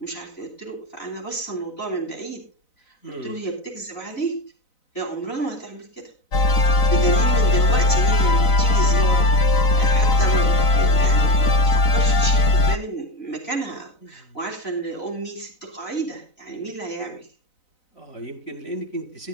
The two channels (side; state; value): right; late; 4.0 ms